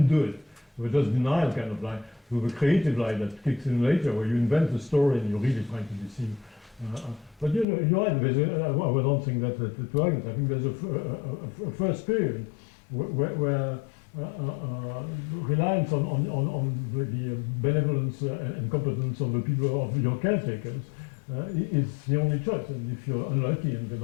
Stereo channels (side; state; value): right; drops out; at 7.7 s